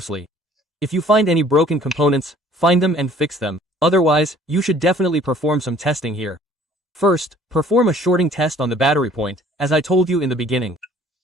If you find any broken components, find them and fix them. Otherwise, you should definitely perform some testing here. First, perform a shorting test on the battery point, as I told you in the beginning.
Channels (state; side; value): normal; both; correlation 0.55